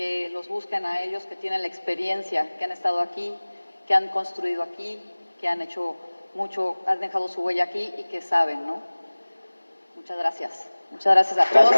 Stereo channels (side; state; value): both; inverted; correlation -1.00